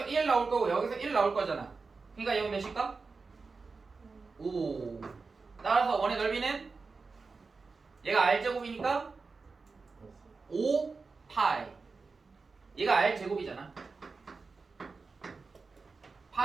1 나올 거고 여기서 1 나올 거잖아. 그러니까 여기 몇일까? 5. 따라서 원의 넓이는 얘가 r제곱이니까 5파이. 얘가 r제곱이잖아.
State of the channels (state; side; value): quieter; left; 4.3 dB